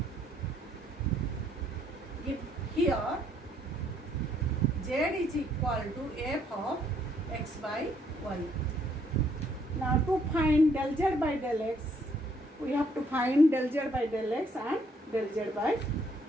if here z is equal to f of x by y. Now to find del z by del x, we have to find del z by del x and del z by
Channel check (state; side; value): normal; both; correlation 0.68